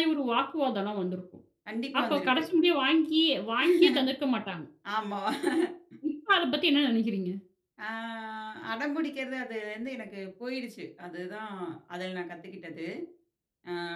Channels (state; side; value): identical; both; correlation 1.00